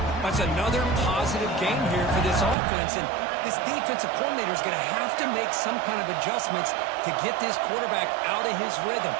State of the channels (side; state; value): left; drops out; at 2.6 s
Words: That's another positive game here for this offense, and this defensive coordinator is going to have to make some kind of adjustments to get this quarterback out of his rhythm.